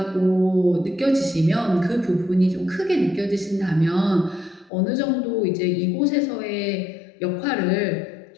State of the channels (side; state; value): right; drops out; at 4.7 s